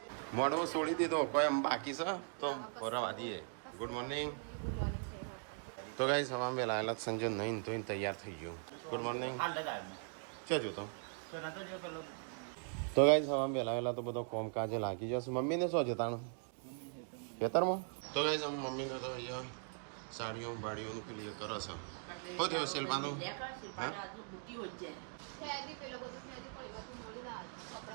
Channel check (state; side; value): silent; left; 51 dB below the other